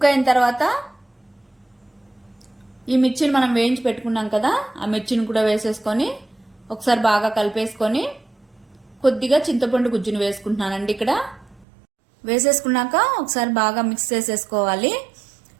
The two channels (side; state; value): left; drops out; at 11.7 s